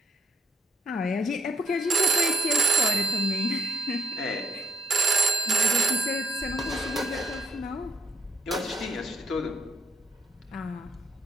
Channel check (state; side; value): normal; both; correlation 0.71